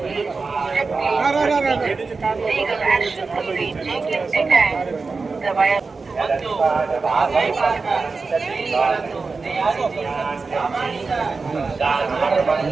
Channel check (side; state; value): left; quieter; 4.3 dB